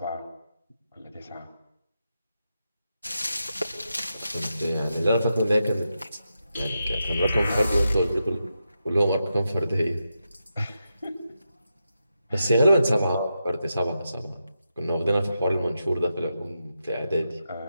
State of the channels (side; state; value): both; inverted; correlation -0.87